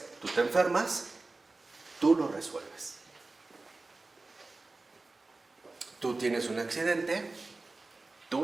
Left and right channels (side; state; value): left; quieter; 3.4 dB